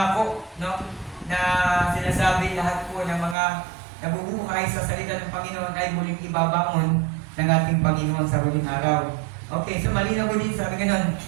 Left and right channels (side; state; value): left; drops out; at 3.4 s